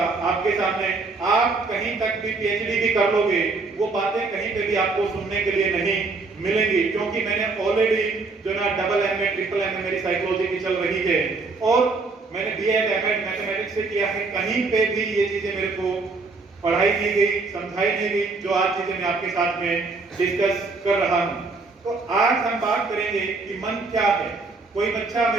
आपके सामने, आप कहीं तक भी पीएचडी भी कर लोगे, वो बातें कहीं पे भी आपको सुनने के लिए नहीं मिलेंगी। क्योंकि मैंने ऑलरेडी जो ना डबल एमए, ट्रिपल एमए मेरी साइकोलॉजी की चल रही है और मैंने बीएड एमएड मैथमेटिक्स से किया है। कहीं पे भी ये चीजें मेरे को पढ़ाई नहीं गई, समझाई नहीं गई, जो आज चीजें मैं आपके साथ में डिस्कस कर रहा हूं। तो आज हम बात करेंगे कि मन क्या है। कोई बच्चा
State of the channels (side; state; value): left; quieter; 3.9 dB